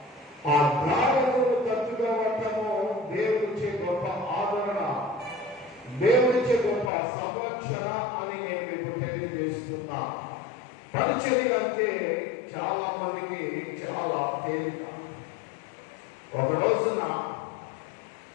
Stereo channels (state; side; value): drops out; right; at 6.9 s